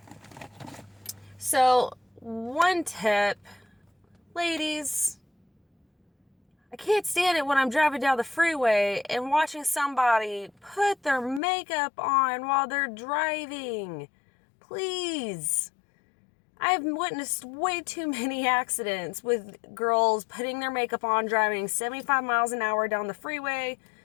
So one tip, ladies, I can't stand it when I'm driving down the freeway and watching somebody put their makeup on while they're driving. Please. I've witnessed way too many accidents with girls putting their makeup on, driving 75 miles an hour down the freeway.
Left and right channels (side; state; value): right; drops out; at 11.4 s